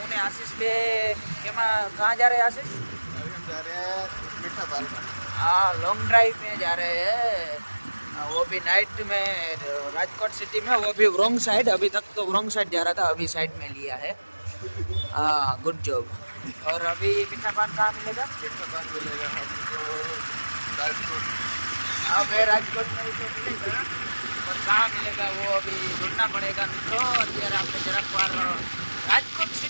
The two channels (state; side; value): inverted; both; correlation -1.00